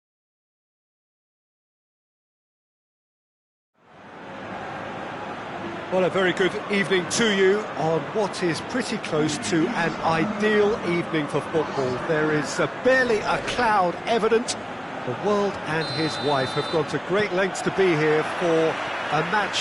Well, a very good evening to you on what is pretty close to an ideal evening for football. There is barely a cloud evident. The world and his wife have gone to great lengths to be here for a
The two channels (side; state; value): both; identical; correlation 1.00